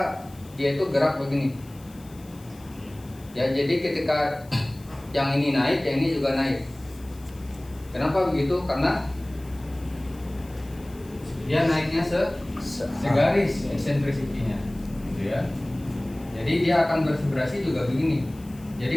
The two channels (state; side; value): noise; left; hiss, 25 dB below the sound